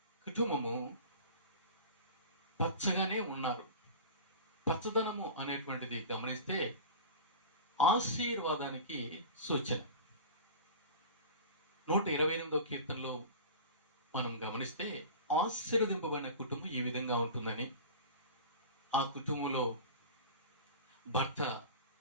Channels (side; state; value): both; inverted; correlation -0.33